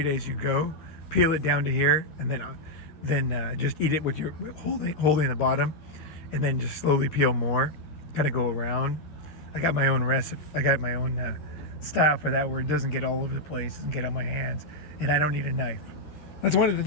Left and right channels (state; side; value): late; right; 13 ms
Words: as you go. Peel it down to here and then just eat it with your holding the bottom, and then just slowly peel more. Kind of go around. I got my own recipe. I got my own style for that, where it doesn't get all over the place and get on my hands, and I don't need a knife. That's one of the